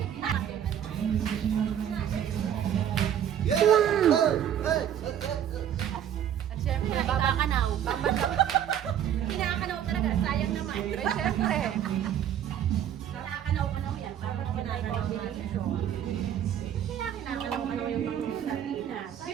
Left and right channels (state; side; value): quieter; left; 9.9 dB